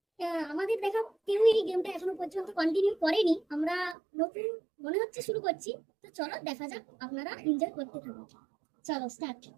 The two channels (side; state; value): left; drops out; at 4.0 s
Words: আমাদের দেখা কেউ এই গেমটা এখনো পর্যন্ত কন্টিনিউ করেনি। আমরা নতুন মনে হচ্ছে শুরু করছি। তো চলো দেখা যাক, আপনারা এনজয় করতে থাকুন। চলো স্টার্ট।